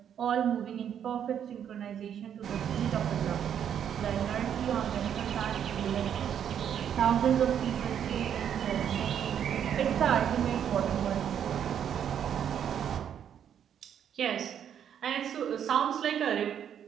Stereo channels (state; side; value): quieter; left; 9.0 dB